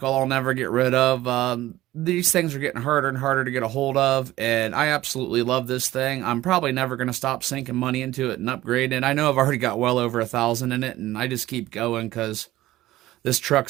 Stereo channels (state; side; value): quieter; left; 15.9 dB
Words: I'll never get rid of. These things are getting harder and harder to get a hold of, and I absolutely love this thing. I'm probably never going to stop sinking money into it and upgrading it. I know I've already got well over 1,000 in it, and I just keep going because this